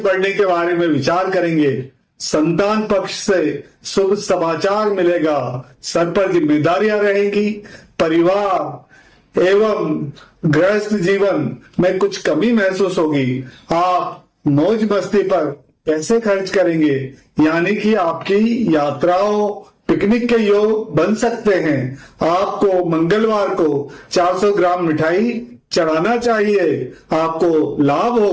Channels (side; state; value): both; identical; correlation 1.00